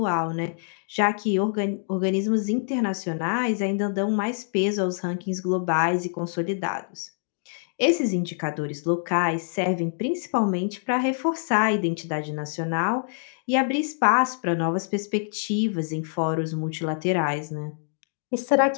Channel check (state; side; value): silent; right; digital silence